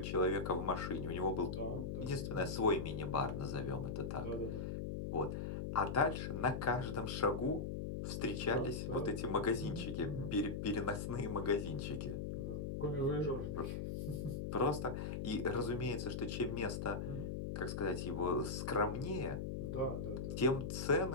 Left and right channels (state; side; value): noise; left; hum, 3 dB below the sound